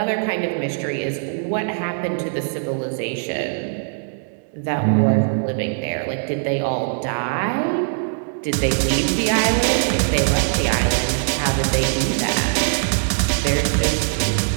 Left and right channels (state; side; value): silent; left; digital silence